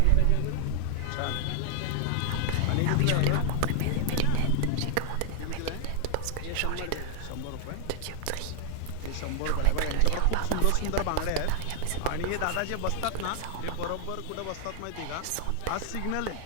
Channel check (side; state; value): both; different; correlation 0.00